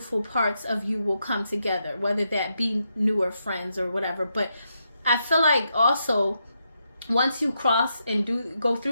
parts of you will come together, whether that be newer friends or whatever. But I feel like also once you cross and go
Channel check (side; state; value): both; inverted; correlation -0.82